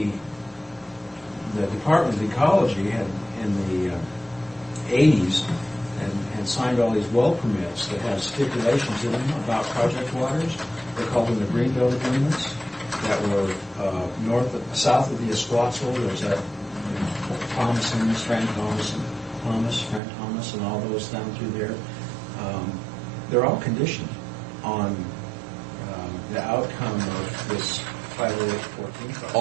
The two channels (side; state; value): left; drops out; at 20.0 s